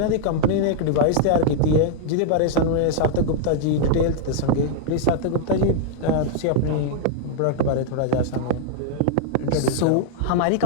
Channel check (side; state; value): both; different; correlation -0.01